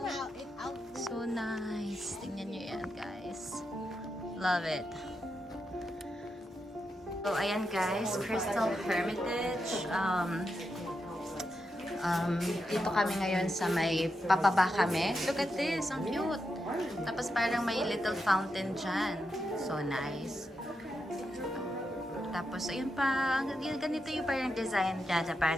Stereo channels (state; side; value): normal; both; correlation 0.86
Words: So nice. Tingnan nyo yan, guys. Love it. So, ayan guys, Crystal Hermitage. Dito kami ngayon sa may papaba kami. Look at this, ang cute. Tapos parang may little fountain dyan. So nice. Tapos, ayun pa, ganito yung parang design dyan.